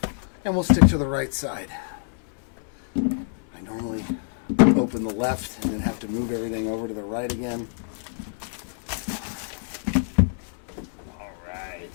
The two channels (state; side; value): silent; right; digital silence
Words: and we'll stick to the right side. I normally open the left and then have to move everything over to the right again. All